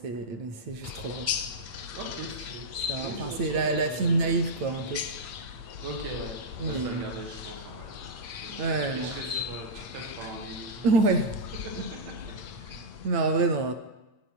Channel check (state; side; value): late; left; 9.0 ms